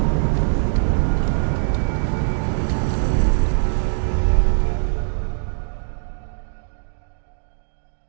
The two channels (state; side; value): silent; left; digital silence